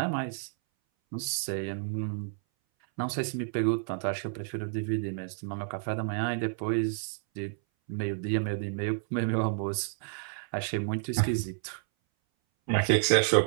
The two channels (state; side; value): silent; left; 58 dB below the other